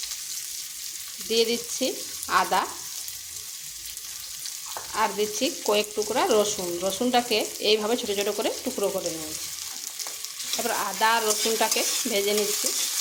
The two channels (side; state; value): both; identical; correlation 1.00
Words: দিয়ে দিচ্ছি আদা আর দিচ্ছি কয়েক টুকরা রসুন। রসুনটাকে এইভাবে ছোট ছোট করে টুকরো করে নিয়েছি। তারপর আদা আর রসুনটাকে ভেজে নিচ্ছি।